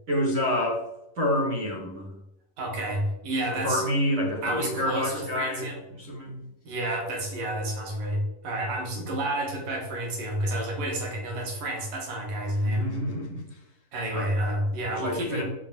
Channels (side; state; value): left; late; 11 ms